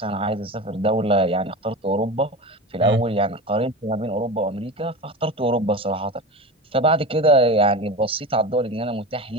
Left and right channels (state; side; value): normal; both; correlation 0.27